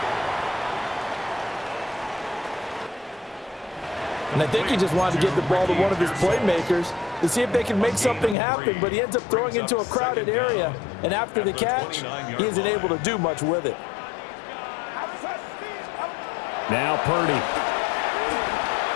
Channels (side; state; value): right; drops out; at 8.3 s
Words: And I think he just wanted to give the ball to one of his playmakers to see if they can make something happen, but he ends up throwing into a crowded area. And after the catch, he isn't able to do much with it. Now Purdy.